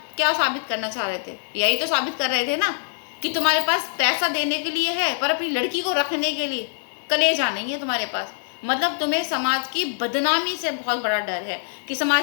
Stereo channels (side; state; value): right; silent; digital silence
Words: क्या साबित करना चाह रहे थे? यही तो साबित कर रहे थे ना कि तुम्हारे पास पैसा देने के लिए है, पर अपनी लड़की को रखने के लिए कलेजा नहीं है तुम्हारे पास। मतलब तुम्हें समाज की बदनामी से बहुत बड़ा डर है कि